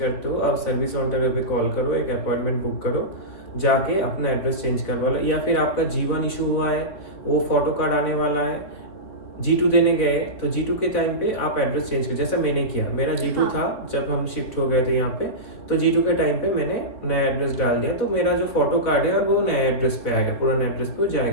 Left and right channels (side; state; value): right; late; 4.1 ms